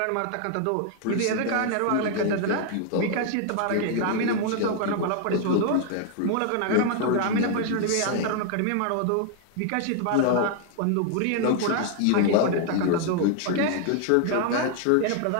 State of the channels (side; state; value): both; different; correlation 0.00